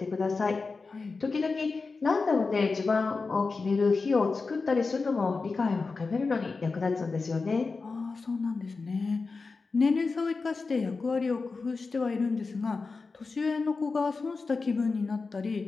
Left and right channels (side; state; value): right; quieter; 4.2 dB